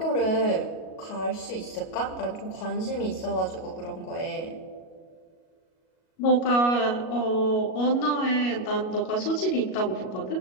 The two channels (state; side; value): late; right; 37 ms